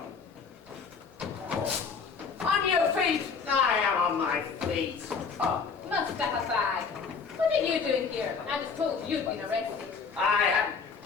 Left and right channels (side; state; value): right; quieter; 5.5 dB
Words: On your feet! I am on my feet. Oh, Mustafa Fag. What are you doing here? I was told you'd been arrested. I